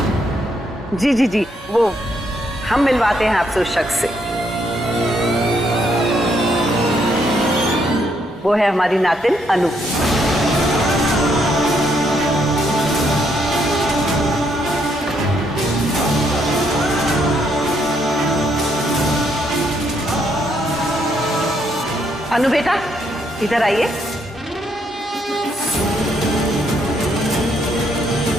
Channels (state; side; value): normal; both; correlation 0.73